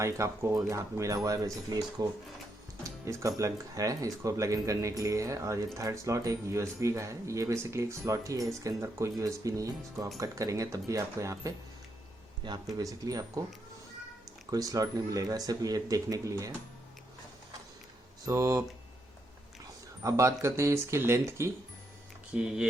आपको यहाँ पे मिला हुआ है, बेसिकली इसका प्लग है, इसको प्लग इन करने के लिए है। और ये थर्ड स्लॉट एक USB का है। ये बेसिकली एक स्लॉट ही है, इसके अंदर कोई USB नहीं है। इसको आप कट करेंगे तब भी आपको यहाँ पे बेसिकली आपको कोई स्लॉट नहीं मिलेगा, सिर्फ ये देखने के लिए है। सो अब बात करते हैं इसकी लेंथ की,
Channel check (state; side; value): normal; both; correlation 0.79